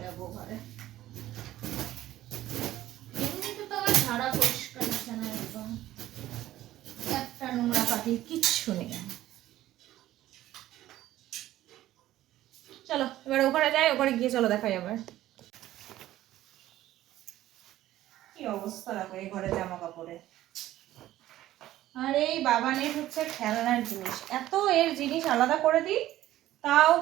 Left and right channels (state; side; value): quieter; left; 14.3 dB